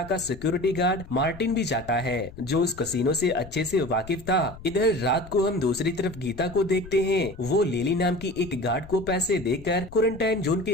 का सिक्योरिटी गार्ड मार्टिन भी जाता है जो उस कसिनो से अच्छे से वाकिफ था। इधर रात को हम दूसरी तरफ गीता को देखते हैं। वो लिली नाम की एक गार्ड को पैसे देकर क्वारंटाइन जोन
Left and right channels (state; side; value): noise; left; rumble, 17 dB below the sound